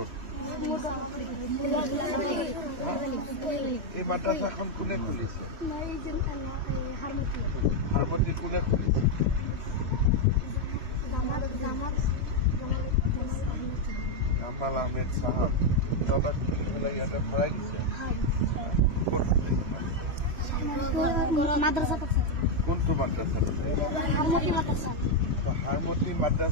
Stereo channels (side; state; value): left; late; 3.1 ms